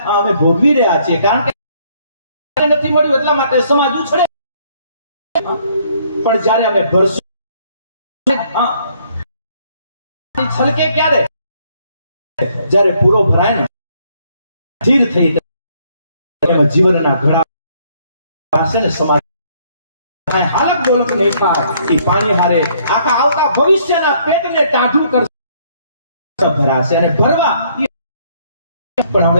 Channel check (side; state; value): both; inverted; correlation -0.66